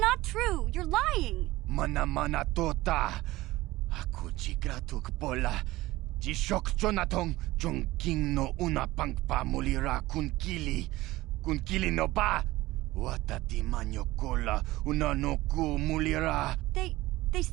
true. You're lying. Mana tota. Aku chigratuk pola. Jishok chonatong chung king no una pangpa mulira kun kili. Kun kili no ba. Watati manyo kola una no ku mulira. They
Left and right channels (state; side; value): quieter; left; 18.2 dB